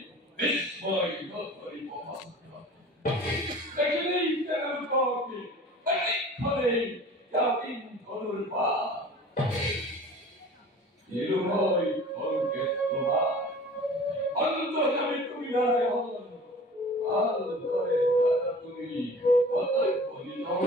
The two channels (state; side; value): normal; both; correlation 0.43